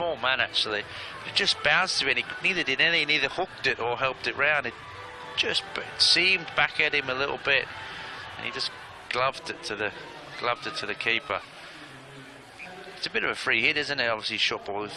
man, actually. But it just bounced a bit. He neither did anything. Neither hooked it or helped it round. It just seemed back at him a little bit, and he just gloved it to the keeper. It's a bit of a free hit, isn't it? Obviously, short ball with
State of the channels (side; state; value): both; identical; correlation 1.00